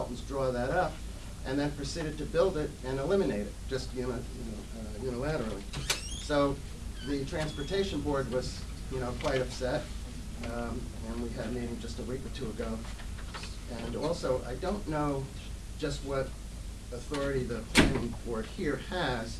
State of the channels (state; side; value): identical; both; correlation 1.00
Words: draw that up and then proceeded to build it and eliminate it, just unilaterally. So the transportation board was quite upset, and we had a meeting just a week or two ago. And also, I don't know just what authority the planning board here has.